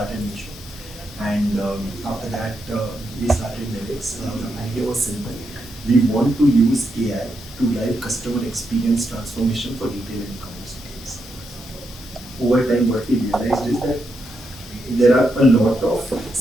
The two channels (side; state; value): both; normal; correlation 0.82